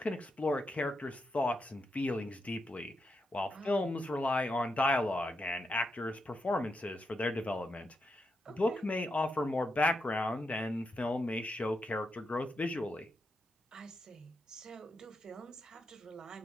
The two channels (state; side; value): normal; both; correlation 0.84